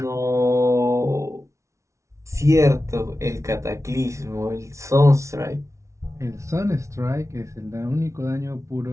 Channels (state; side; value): late; left; 0.14 ms